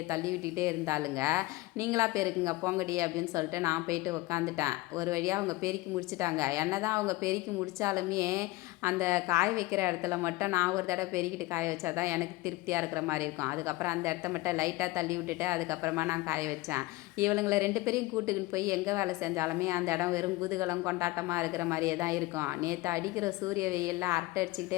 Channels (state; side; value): quieter; right; 20.1 dB